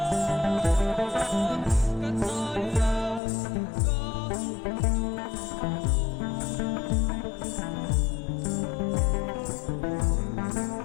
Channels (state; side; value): drops out; right; at 3.2 s